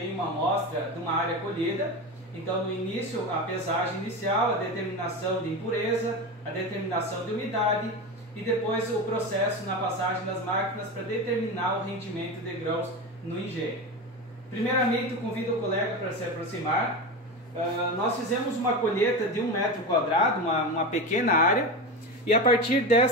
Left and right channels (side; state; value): both; normal; correlation 0.22